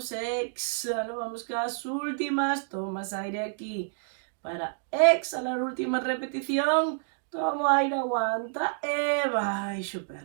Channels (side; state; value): left; silent; digital silence